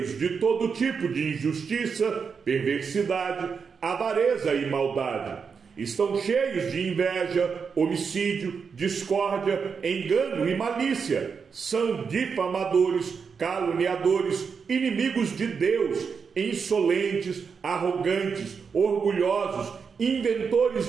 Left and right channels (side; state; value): left; quieter; 5.9 dB